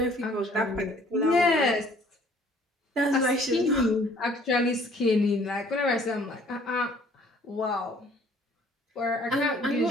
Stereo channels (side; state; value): both; normal; correlation 0.57